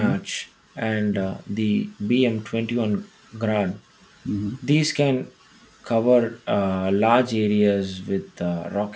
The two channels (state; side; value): identical; both; correlation 1.00